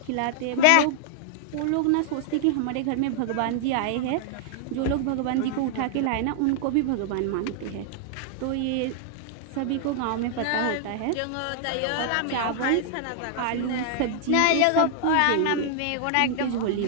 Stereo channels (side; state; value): both; different; correlation -0.01